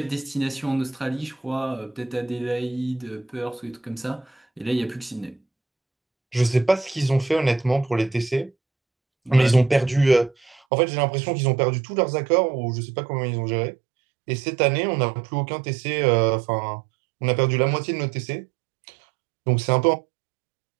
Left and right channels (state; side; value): drops out; left; at 10.6 s